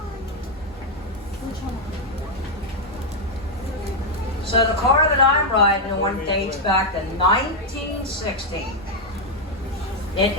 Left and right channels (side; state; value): both; normal; correlation 0.00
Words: So the car that I'm riding on dates back to 1916. It